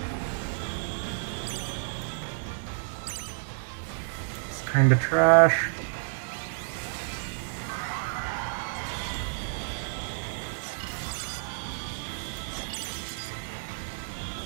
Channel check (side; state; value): left; silent; digital silence